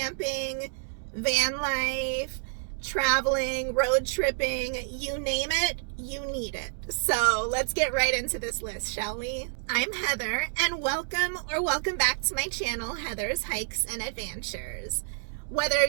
van life, traveling, road tripping, you name it, you need it. So let's get right into this list, shall we? I'm Heather, and welcome back to my channel, Heather's Hikes and Adventures. Whether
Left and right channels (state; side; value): silent; left; digital silence